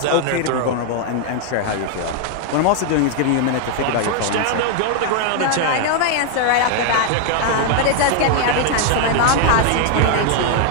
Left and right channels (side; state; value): both; different; correlation 0.00